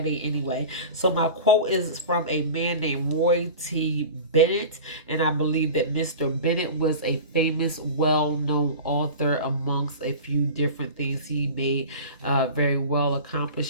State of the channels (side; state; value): both; inverted; correlation -0.35